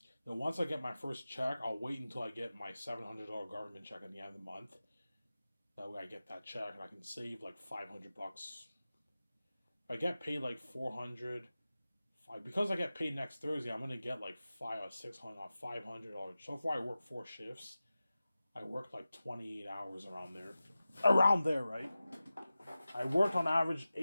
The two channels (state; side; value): inverted; both; correlation -0.96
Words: Then once I get my first check, I'll wait until I get my $700 government check at the end of the month. That way I get that check and I can save like $500. If I get paid like 400, because I get paid next Thursday, I'm gonna get like 500. So far I work 4 shifts. I worked like 28 hours around there. Around there, right? I worked on average